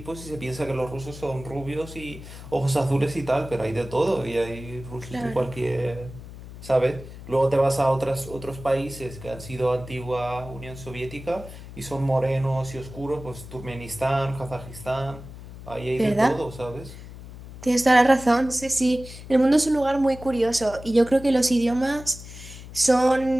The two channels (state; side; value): noise; left; hum, 14 dB below the sound